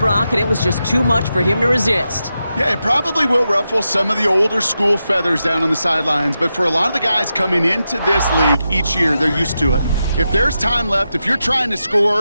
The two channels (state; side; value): inverted; both; correlation -0.88